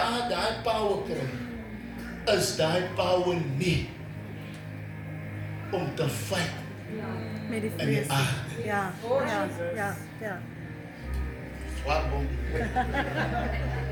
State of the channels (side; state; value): both; identical; correlation 1.00